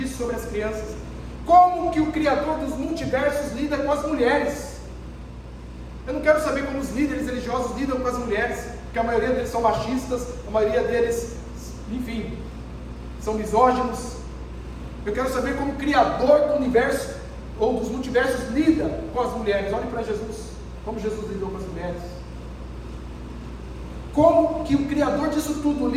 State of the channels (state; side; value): identical; both; correlation 1.00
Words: sobre as crianças. Como que o Criador dos multiversos lida com as mulheres? Eu não quero saber como os líderes religiosos lidam com as mulheres, porque a maioria deles são machistas, a maioria deles, enfim, são misóginos. Eu quero saber como o Criador do universo, ou dos multiversos, lida com as mulheres. Olhe para Jesus, como Jesus lidou com as mulheres. Como que o Criador disso tudo